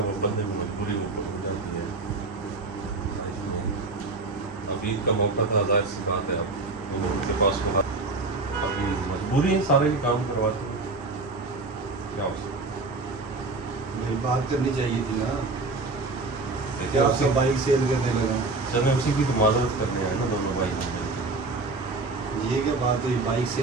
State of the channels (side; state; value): left; quieter; 3.5 dB